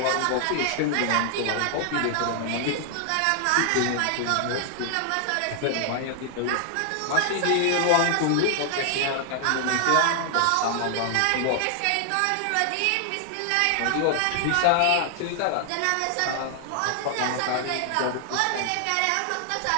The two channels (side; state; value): both; different; correlation 0.00